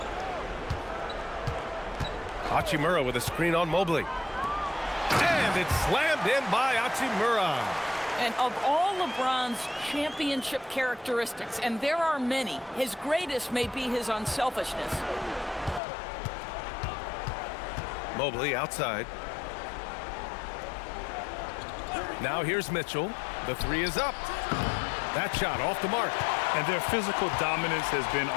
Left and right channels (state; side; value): drops out; right; at 15.8 s